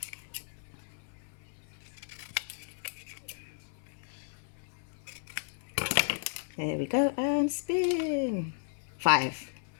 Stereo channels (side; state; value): right; silent; 55 dB below the other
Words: There we go, and spin. 5.